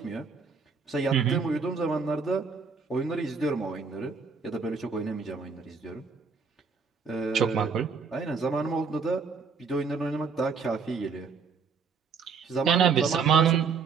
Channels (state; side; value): quieter; left; 5.4 dB